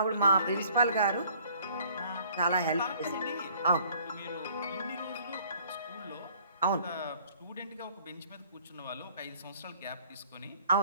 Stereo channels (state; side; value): inverted; both; correlation -0.57